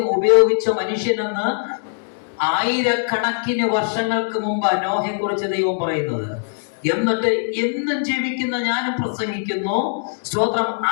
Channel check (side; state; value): right; silent; digital silence